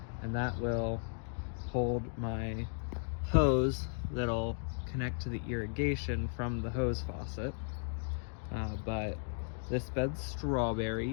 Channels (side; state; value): right; silent; digital silence